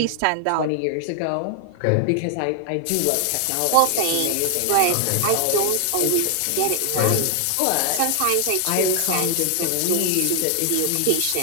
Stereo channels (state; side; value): different; both; correlation 0.00